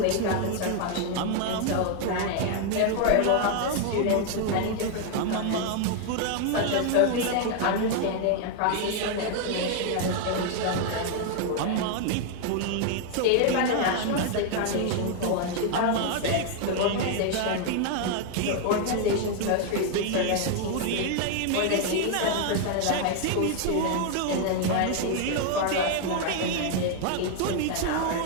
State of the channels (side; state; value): both; different; correlation 0.00